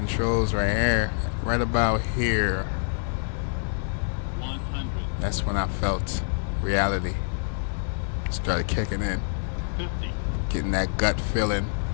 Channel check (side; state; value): right; silent; digital silence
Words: right here. Right about here. That's when I felt reality started kicking in. Getting that gut feeling.